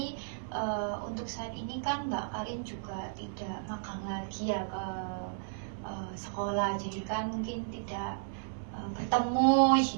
untuk saat ini kan Mbak Karin juga tidak magang lagi ya ke sekolah, jadi kan mungkin tidak bertemu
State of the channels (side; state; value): left; silent; digital silence